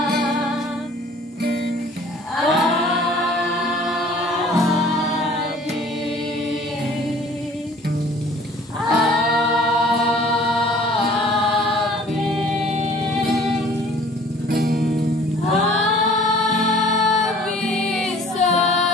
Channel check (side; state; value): both; normal; correlation 0.52